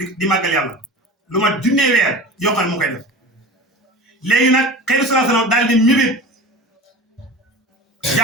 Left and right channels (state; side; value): normal; both; correlation 0.34